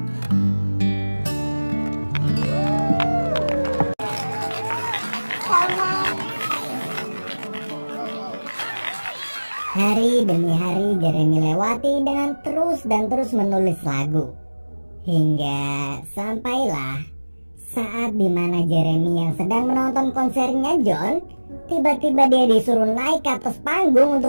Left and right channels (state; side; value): inverted; both; correlation -1.00